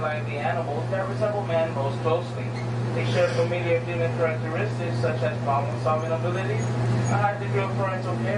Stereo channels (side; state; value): both; identical; correlation 1.00